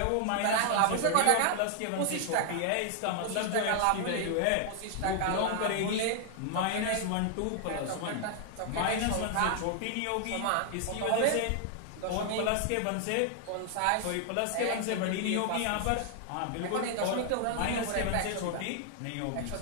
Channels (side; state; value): both; different; correlation 0.00